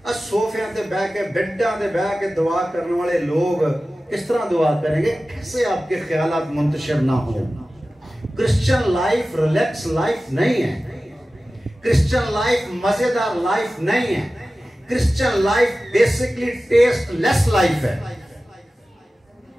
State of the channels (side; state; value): both; normal; correlation 0.96